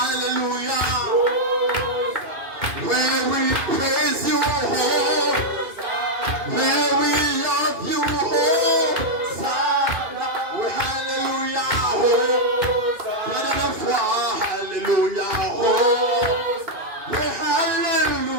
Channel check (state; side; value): late; left; 2.5 ms